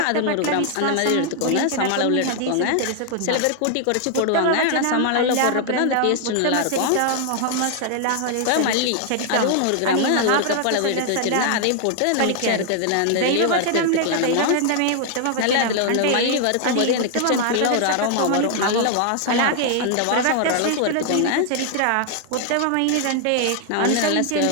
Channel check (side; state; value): both; different; correlation 0.00